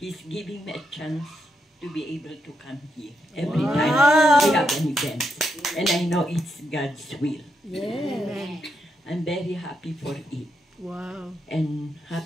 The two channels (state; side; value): normal; both; correlation 0.81